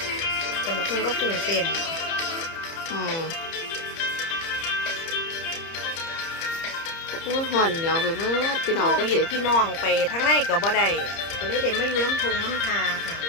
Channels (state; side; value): late; right; 30 ms